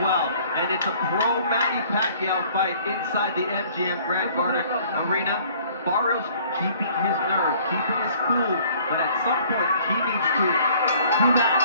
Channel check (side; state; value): both; inverted; correlation -0.56